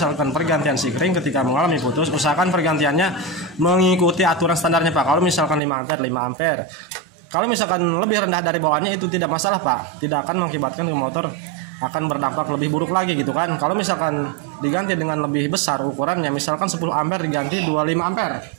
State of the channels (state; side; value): drops out; left; at 5.6 s